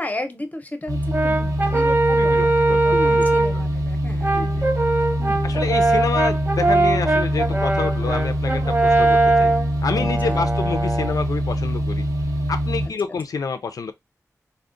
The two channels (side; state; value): both; normal; correlation 0.85